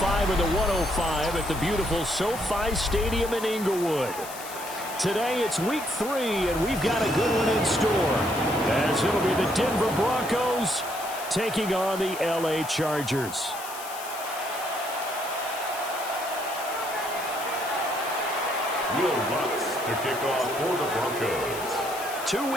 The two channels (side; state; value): left; noise; hiss, 12 dB below the sound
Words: or the 105 at the beautiful SoFi Stadium in Inglewood. Today it's week 3, and we've got a good one in store, as it'll be the Denver Broncos taking on the LA Chargers. Will Lutz to kick off for the Broncos. 2